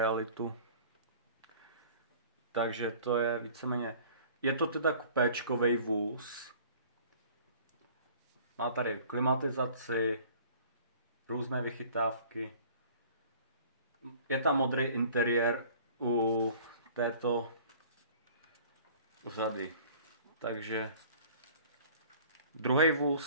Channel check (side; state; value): both; inverted; correlation -0.49